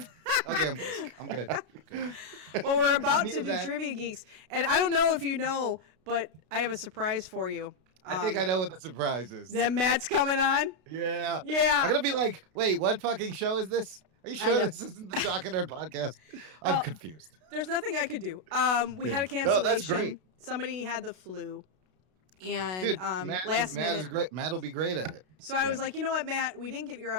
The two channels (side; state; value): left; late; 32 ms